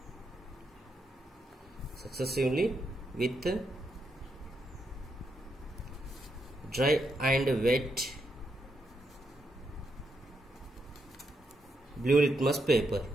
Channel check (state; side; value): normal; both; correlation 0.81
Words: with dry and wet blue litmus paper.